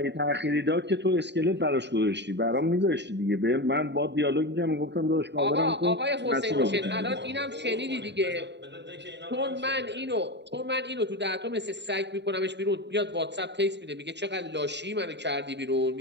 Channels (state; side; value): late; left; 0.51 ms